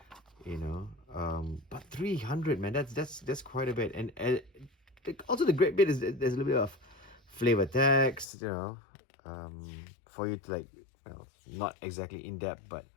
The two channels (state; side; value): drops out; right; at 8.2 s